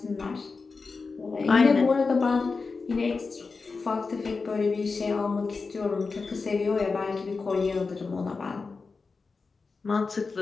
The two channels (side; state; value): right; quieter; 4.4 dB